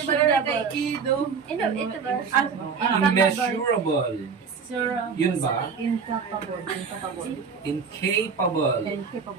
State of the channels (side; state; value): left; quieter; 5.8 dB